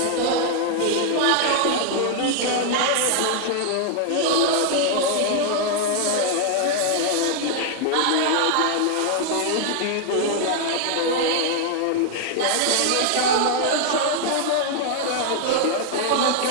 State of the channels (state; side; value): different; both; correlation 0.00